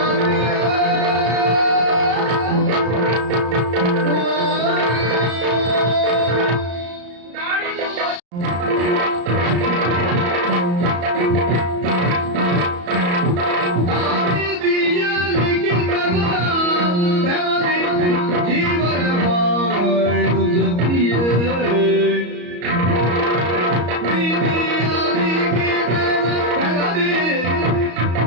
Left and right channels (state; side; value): late; left; 34 ms